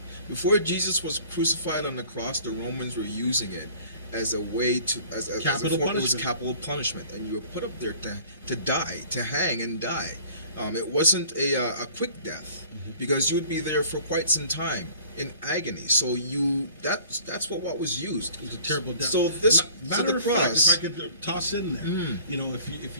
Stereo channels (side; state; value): both; inverted; correlation -0.50